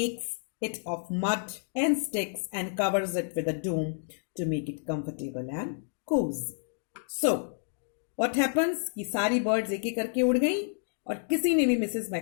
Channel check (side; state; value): right; silent; digital silence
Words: it of mud and sticks and covers it with a dome to make it comfortable and cozy. So, what happens कि सारी birds एक एक करके उड़ गई और किसी ने भी मिसेस